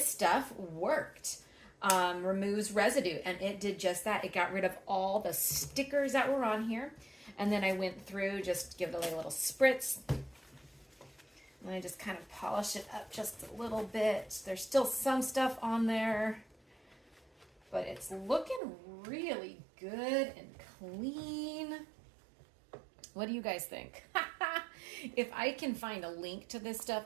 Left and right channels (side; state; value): left; drops out; at 18.6 s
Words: stuff worked. Removes residue, and it did just that. It got rid of all the stickers that were on here, and then I went through, just give it a little spritz, and I just kind of polish it up just a little bit. There's still some stuff on there, but it's looking really good and clean. What do you guys think? If I can find a link to this stuff,